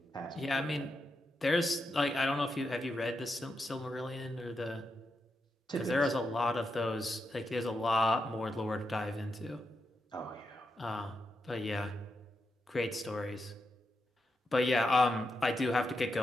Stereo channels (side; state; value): both; normal; correlation 0.85